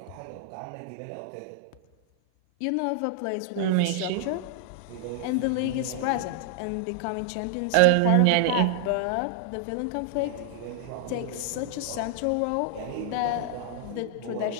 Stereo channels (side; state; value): both; different; correlation 0.00